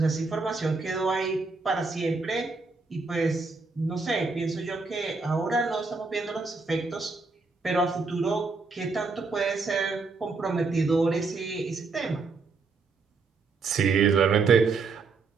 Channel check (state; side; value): quieter; left; 4.2 dB